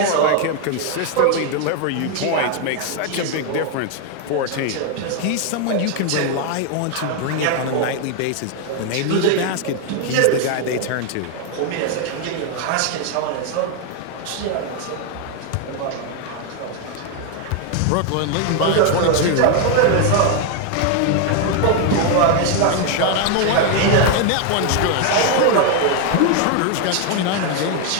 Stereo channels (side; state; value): both; different; correlation 0.01